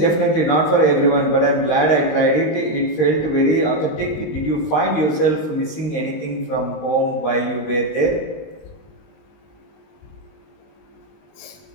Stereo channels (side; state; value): right; late; 19 ms